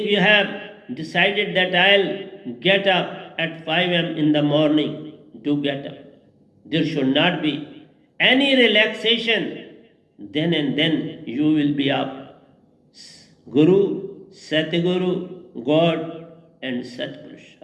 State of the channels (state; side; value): identical; both; correlation 1.00